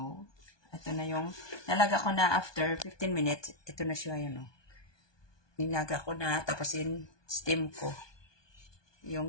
ito na yung, nalaga ko na after 15 minutes. Ito na siya, yun o. Nilaga ko na, tapos steam ko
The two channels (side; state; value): right; late; 1.2 ms